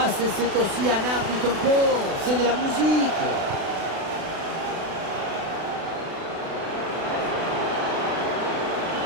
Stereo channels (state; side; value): late; left; 36 ms